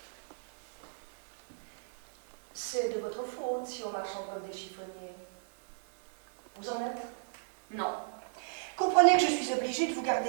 C'est de votre faute si on marchande comme des chiffonniers. Vous en êtes? Non. Comprenez que je suis obligée de vous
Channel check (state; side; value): silent; left; 55 dB below the other